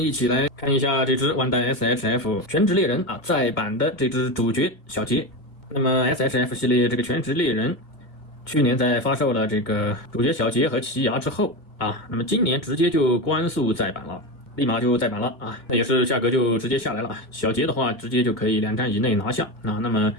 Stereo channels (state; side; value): late; right; 2.2 ms